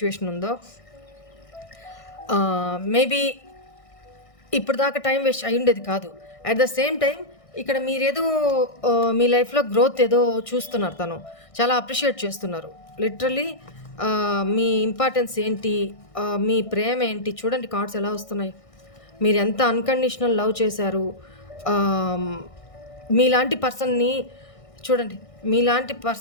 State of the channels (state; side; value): late; right; 1.6 ms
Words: ఉందో, మేబీ ఇప్పుడు దాకా టైం వేస్ట్ అయి ఉండేది కాదు. అట్ ద సేమ్ టైం ఇక్కడ మీరేదో మీ లైఫ్లో గ్రోత్ ఏదో చూస్తున్నారు, తను చాలా అప్రిషియేట్ చేస్తున్నారు. లిటరలీ మీ ఇంపార్టెన్స్ ఏంటి, మీ ప్రేమ ఏంటి చూడండి, కార్డ్స్ ఎలా వస్తున్నాయి. మీరు ఎంత అన్కండిషనల్ లవ్ చేశారు. మీలాంటి పర్సన్ని చూడండి, మీలాంటి